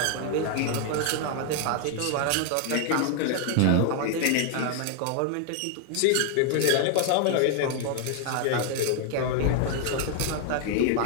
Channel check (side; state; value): both; different; correlation 0.00